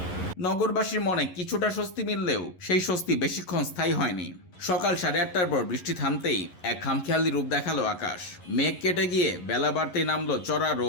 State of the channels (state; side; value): late; right; 11 ms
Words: নগরবাসীর মনে কিছুটা স্বস্তি মিললেও সেই স্বস্তি বেশিক্ষণ স্থায়ী হয়নি। সকাল ৮:৩০টার পর বৃষ্টি থামতেই এক খামখেয়ালি রূপ দেখালো আকাশ। মেঘ কেটে গিয়ে বেলা বাড়তেই নামলো চড়া